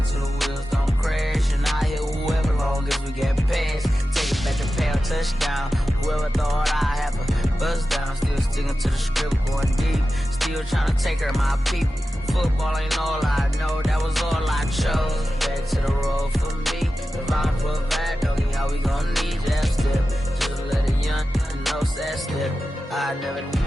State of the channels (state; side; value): normal; both; correlation 0.93